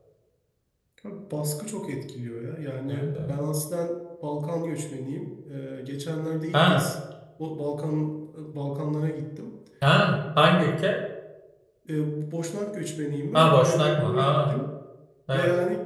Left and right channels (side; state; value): both; identical; correlation 1.00